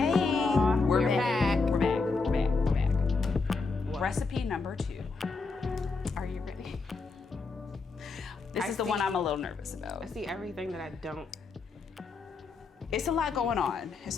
Recipe number 2. Are you ready? This is the one I'm a little nervous about. I see everything that I don't. It's a lot going on.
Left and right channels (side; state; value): right; quieter; 4.2 dB